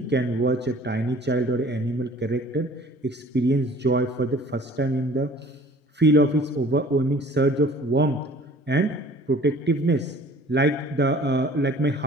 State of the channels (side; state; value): both; normal; correlation 0.50